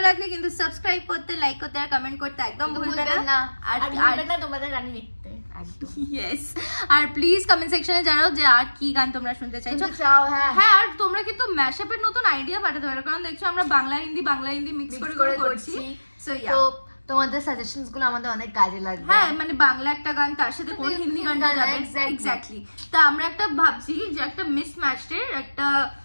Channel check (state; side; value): inverted; both; correlation -1.00